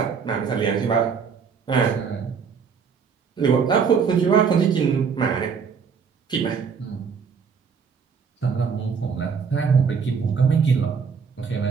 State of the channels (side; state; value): left; quieter; 6.1 dB